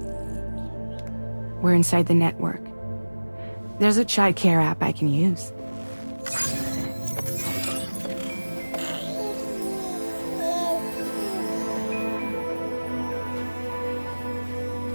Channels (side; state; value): both; inverted; correlation -1.00